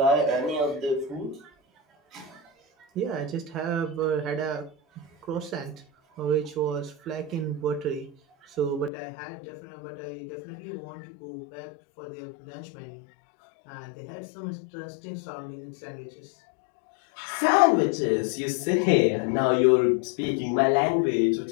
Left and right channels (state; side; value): drops out; right; at 8.9 s